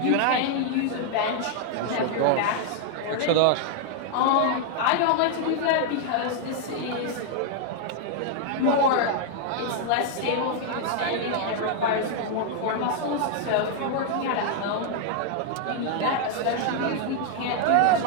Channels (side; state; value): both; different; correlation 0.00